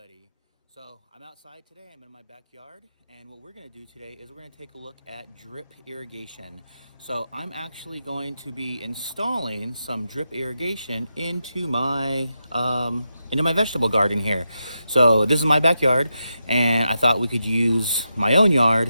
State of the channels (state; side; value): inverted; both; correlation -0.86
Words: So I'm outside today. I'm in my backyard, and what we're going to do today is we're going to take a look at drip irrigation. So I'm actually going to be installing some drip irrigation into my vegetable garden here. So this is my backyard, and I thought we could use my own